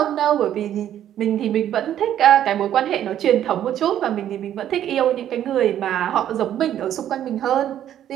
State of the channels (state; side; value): quieter; left; 11.0 dB